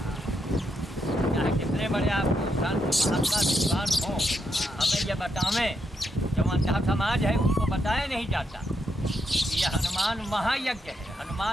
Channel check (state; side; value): normal; both; correlation 0.80